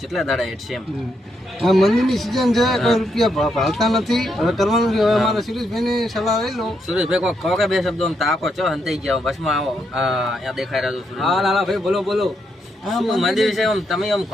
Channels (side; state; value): both; normal; correlation 0.79